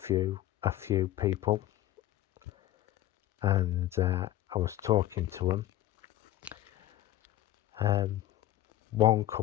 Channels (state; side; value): quieter; right; 14.1 dB